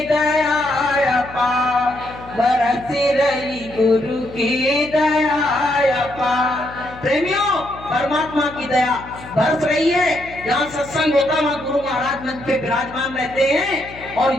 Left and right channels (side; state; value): left; noise; hum, 17 dB below the sound